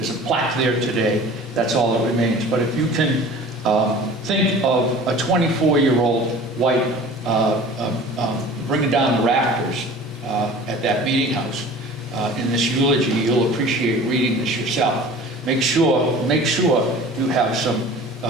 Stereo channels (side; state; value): both; normal; correlation 0.43